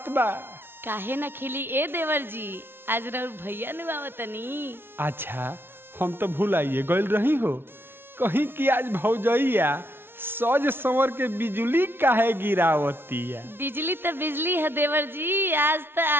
बा? काहे न खिली ए देवर जी, आज रउर भैया नु आवतनी। अच्छा, हम तो भुलाइए गइल रही हो कहीं कि आज भौजैया सज संवर के बिजली काहे गिरावती है? बिजली तो बिजली है देवर जी, आज तो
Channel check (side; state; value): left; late; 0.11 ms